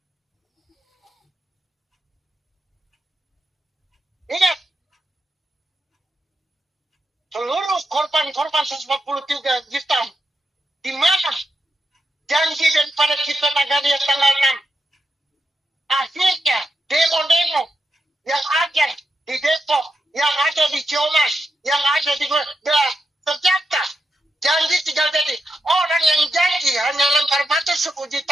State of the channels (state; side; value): normal; both; correlation 0.86